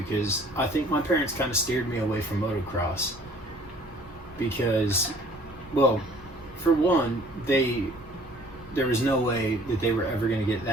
because I think my parents kind of steered me away from motocross. Because, well, for one, there was no way that they were ever going to get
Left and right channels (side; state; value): both; normal; correlation 0.54